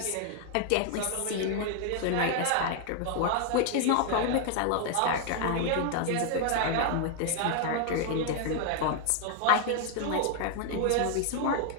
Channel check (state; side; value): different; both; correlation 0.00